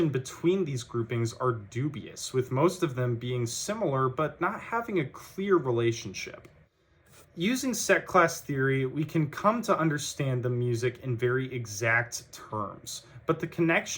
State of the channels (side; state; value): both; identical; correlation 1.00